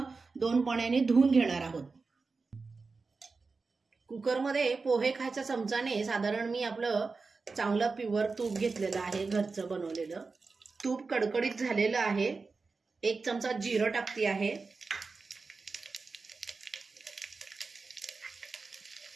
2 पाण्याने धुवून घेणार आहोत। कुकरमध्ये पोहे खायच्या चमचाने साधारण मी आपलं चांगलं प्युअर तूप घेतलेलं आहे, घरचं बनवलेलं। तूप कडकडीत झालेलं आहे। 1 चमचा जिरं टाकते आहे,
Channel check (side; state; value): left; quieter; 4.2 dB